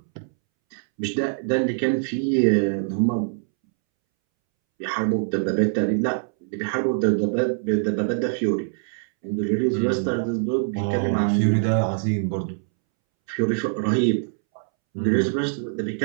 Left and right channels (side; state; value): left; silent; 63 dB below the other